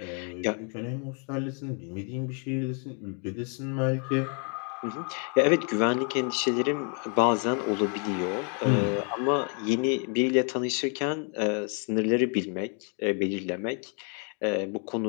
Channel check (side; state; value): right; quieter; 40.0 dB